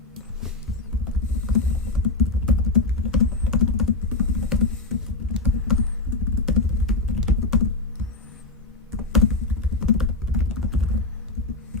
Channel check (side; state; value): right; quieter; 3.2 dB